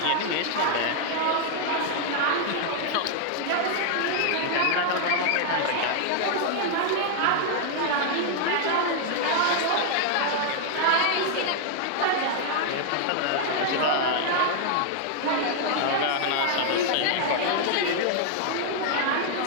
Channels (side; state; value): both; different; correlation 0.00